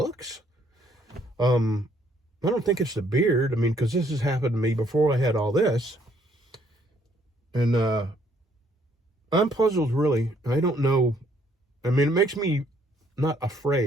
I don't think it's the beard. Because this has happened to me before I had all this. And I'm puzzled, really. I don't know. It makes me not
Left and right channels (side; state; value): both; normal; correlation 0.66